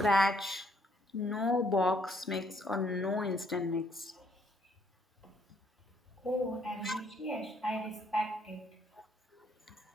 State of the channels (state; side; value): normal; both; correlation 0.68